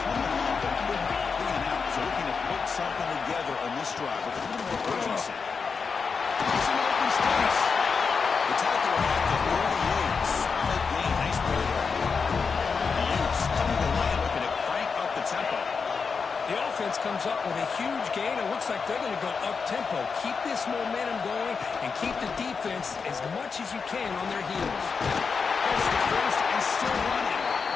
Comes up with a huge gain. It looks like they're going to go up-tempo. Keep this momentum going and keep the defense as much as you can on their heels. There's the first and still running.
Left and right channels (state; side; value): quieter; right; 5.3 dB